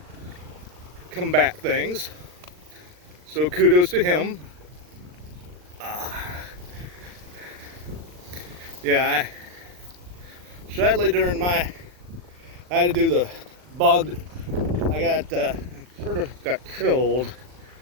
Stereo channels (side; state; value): left; late; 39 ms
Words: combat things. So kudos to him. Yeah, sadly during I had to do the bog. I got sort of got killed